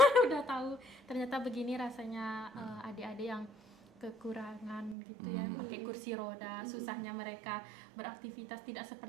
udah tahu ternyata begini rasanya adik-adik yang kekurangan gitu ya, pakai kursi roda, susahnya mereka beraktivitas tidak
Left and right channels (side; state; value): left; drops out; at 5.0 s